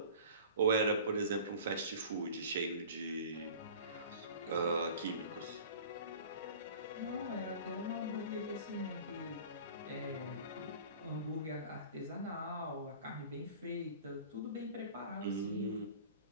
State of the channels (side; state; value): both; inverted; correlation -0.42